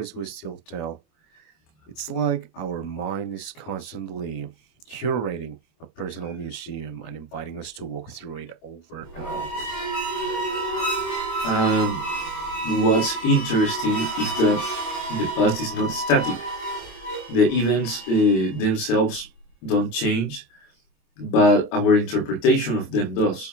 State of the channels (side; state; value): right; late; 26 ms